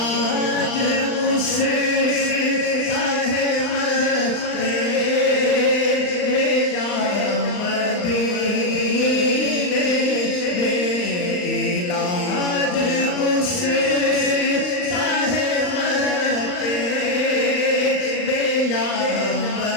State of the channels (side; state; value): right; late; 39 ms